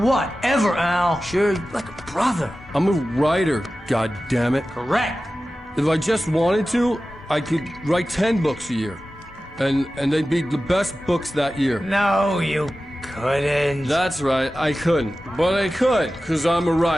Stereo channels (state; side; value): normal; both; correlation 0.95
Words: ever, Al. Sure, like a brother. I'm a writer, goddammit. Correct. If I just wanted to, I could write 10 books a year. And they'd be the best books that year. No, you couldn't. That's right, I couldn't. But I could, because I'm a